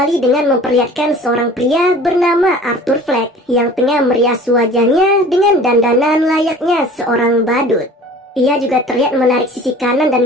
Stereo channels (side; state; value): both; normal; correlation 0.44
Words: dengan memperlihatkan seorang pria bernama Arthur Fleck yang tengah merias wajahnya dengan dandanan layaknya seorang badut. Ia juga terlihat menarik sisi kanan